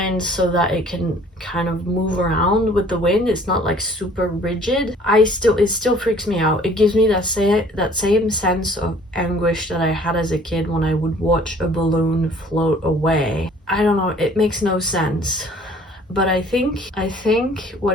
so that it can kind of move around with the wind. It's not like super rigid. It still freaks me out. It gives me that same sense of anguish that I had as a kid when I would watch a balloon float away. I don't know, it makes no sense. But I think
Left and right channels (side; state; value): both; normal; correlation 0.54